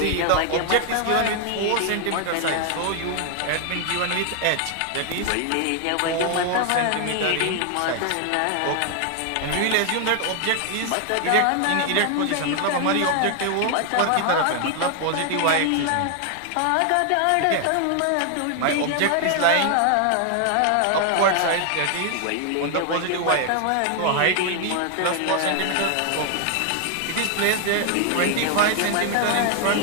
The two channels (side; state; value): both; different; correlation 0.00